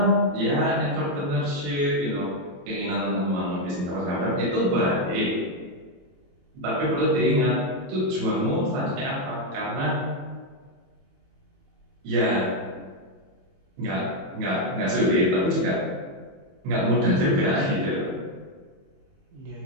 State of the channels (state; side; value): late; left; 22 ms